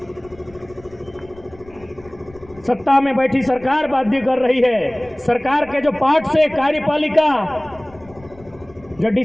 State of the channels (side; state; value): left; noise; rumble, 24 dB below the sound